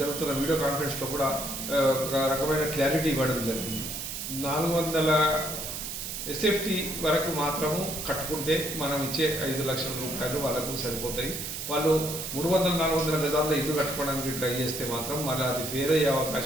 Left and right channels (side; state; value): right; noise; hiss, 6 dB below the sound